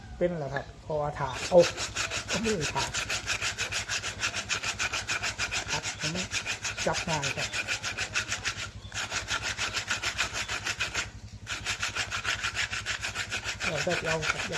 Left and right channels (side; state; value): both; identical; correlation 1.00